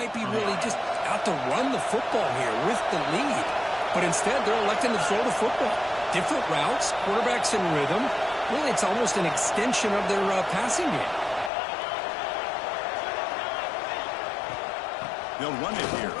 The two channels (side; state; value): right; drops out; at 11.5 s